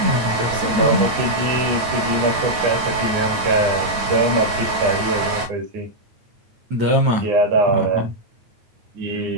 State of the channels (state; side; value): late; left; 9.5 ms